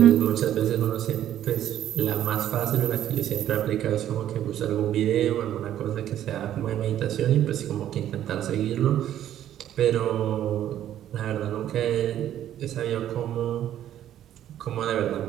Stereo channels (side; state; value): left; quieter; 11.5 dB